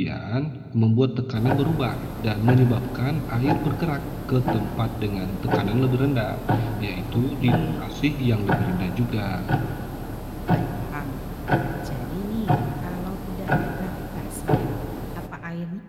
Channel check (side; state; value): both; identical; correlation 1.00